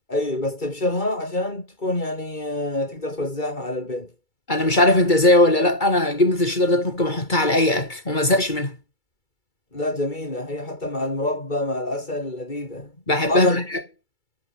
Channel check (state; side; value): late; right; 2.3 ms